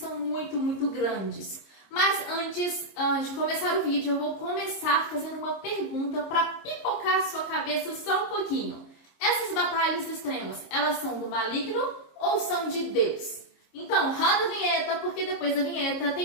muito grandes. Mas antes de começar o vídeo, eu vou começar fazendo uma pergunta pra pipocar a sua cabeça só um pouquinho. Essas batalhas extremas, elas são do maligno ou são de Deus? Então, roda a vinheta, porque depois da vinheta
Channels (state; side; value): late; right; 26 ms